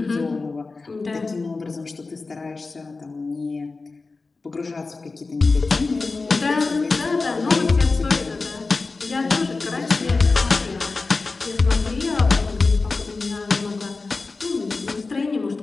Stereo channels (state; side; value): quieter; right; 3.9 dB